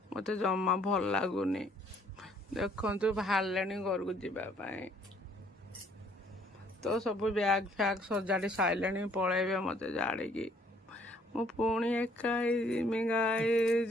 ମୋତେ ଜମା ଭଲ ଲାଗୁନି। ଦେଖନ୍ତୁ ବାହାରିଲେଣି ଘରକୁ ଯିବା ପାଇଁ। ତ ସବୁ ବ୍ୟାଗ୍ ଫ୍ୟାଗ୍ ସଜାଡ଼ି ସାରିଲେଣି, ପଳେଇବେ ମୋତେ ଛାଡ଼ିକି। ମୁଁ ପୁଣି ଏକା ହେଇଯିମି ଗାଇଜ।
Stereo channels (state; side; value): normal; both; correlation 0.63